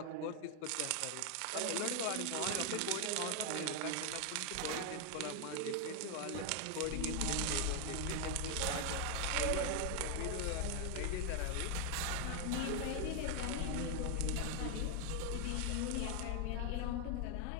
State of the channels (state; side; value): different; both; correlation 0.01